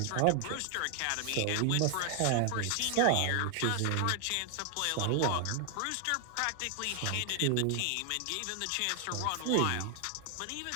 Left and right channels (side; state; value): both; different; correlation 0.00